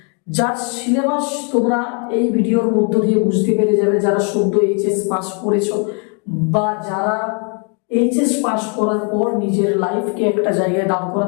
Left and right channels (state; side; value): quieter; right; 38.5 dB